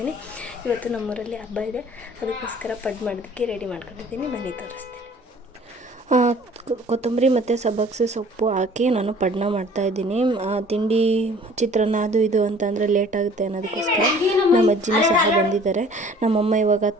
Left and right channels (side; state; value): both; normal; correlation 0.51